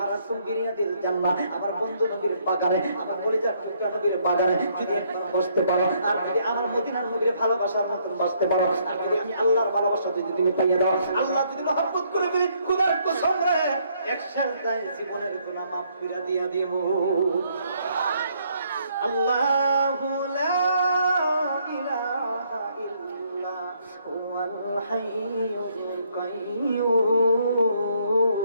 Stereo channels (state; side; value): inverted; both; correlation -0.69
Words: বিরিয়াদিল জান্নাহ, আমার বন্ধু নবীর বাগানে, আমার কলিজার টুকরা নবীর বাগানে যদি একবার বসতে পারো, আর যদি আমার মদিনার নবীর ভালোবাসার মতন বসতে পারো, আর যদি আমি আল্লাহর ভালোবাসা যদি তুমি পাইয়ে দাও, আল্লাহ যদি মহব্বত করে দিই, খোদার কসম রে, এক সাজদায় জীবনের গুনাহ মাফ করে দিয়া দেব। আল্লাহু লা ইলাহা ইল্লা হুয়াল হাইয়ুল কাইয়্যুম।